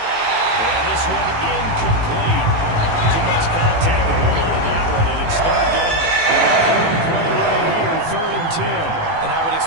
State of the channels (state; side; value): late; left; 18 ms